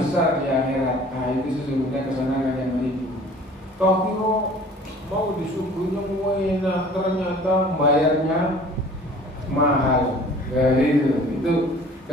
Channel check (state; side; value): normal; both; correlation 0.48